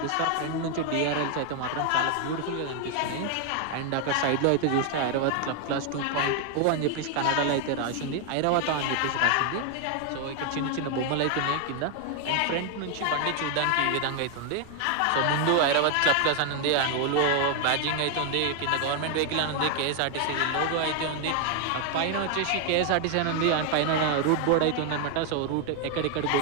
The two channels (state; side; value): different; both; correlation 0.00